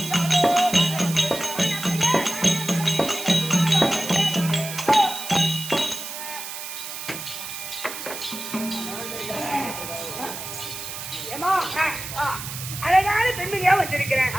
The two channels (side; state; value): right; noise; hiss, 8 dB below the sound